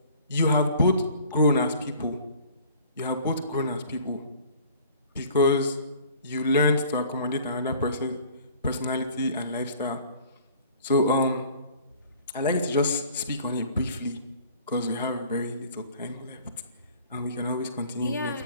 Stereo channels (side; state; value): both; inverted; correlation -0.50